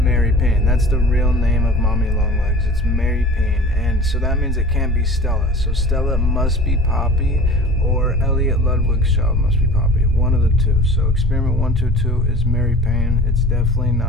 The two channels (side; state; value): both; normal; correlation 0.41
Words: Payne. That's the real name of Mommy Longlegs. It's Mary Payne. And so that means it can't be Stella. So Stella must be Poppy, or Elliot Ludwig's child must be Poppy. One of the two. So experiment 122 is Mary Payne. It's definitely